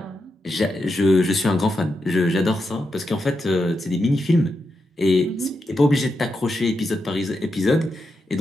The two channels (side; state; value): both; normal; correlation 0.86